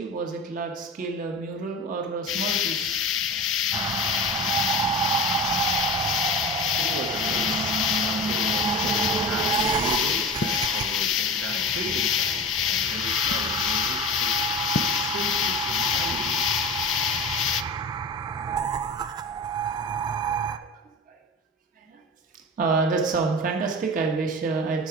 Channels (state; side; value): normal; both; correlation 0.31